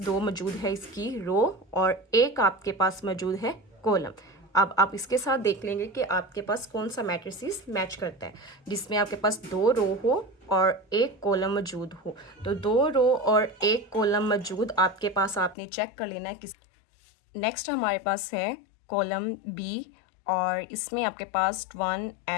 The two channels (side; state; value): right; drops out; at 15.6 s